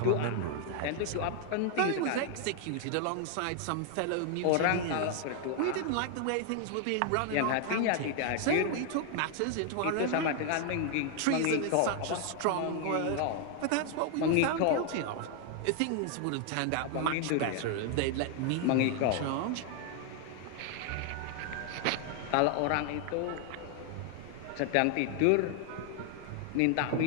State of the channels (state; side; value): different; both; correlation 0.00